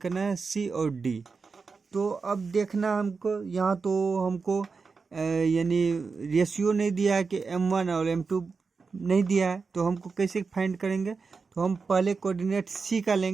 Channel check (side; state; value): left; quieter; 4.8 dB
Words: है, सी और डी। तो अब देखना हमको यहाँ, तो हमको यानी रेशियो नहीं दिया है कि m1 और m2 नहीं दिया है, तो हमको कैसे फाइंड करेंगे। तो हम पहले कोऑर्डिनेट सी का